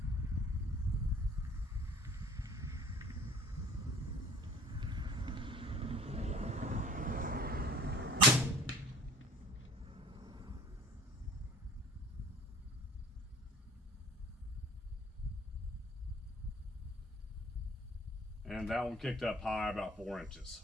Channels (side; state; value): both; normal; correlation 0.48